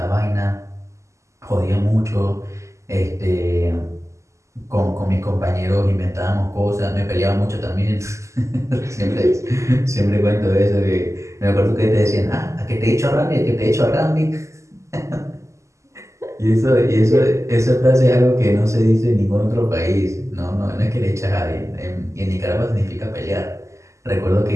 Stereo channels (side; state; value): left; late; 0.14 ms